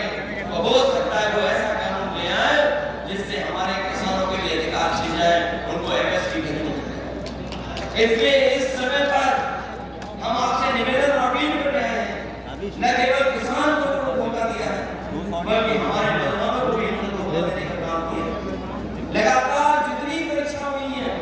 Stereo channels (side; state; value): both; identical; correlation 1.00